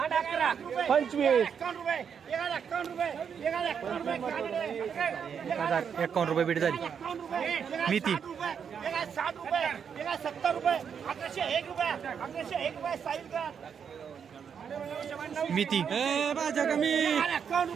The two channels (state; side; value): quieter; left; 7.2 dB